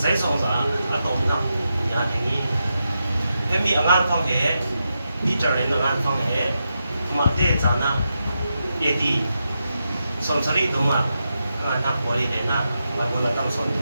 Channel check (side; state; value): both; inverted; correlation -0.87